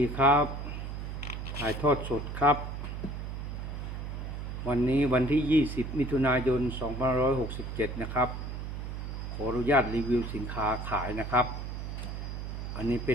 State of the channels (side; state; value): right; noise; hum, 6 dB below the sound